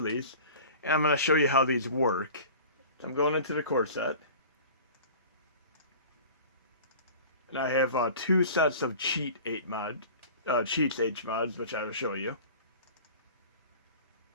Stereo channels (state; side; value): inverted; both; correlation -0.40